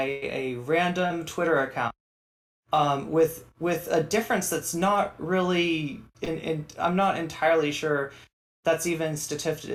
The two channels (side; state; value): both; identical; correlation 1.00